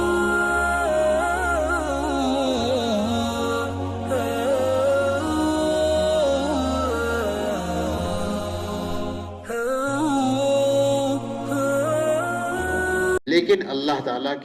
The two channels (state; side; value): identical; both; correlation 1.00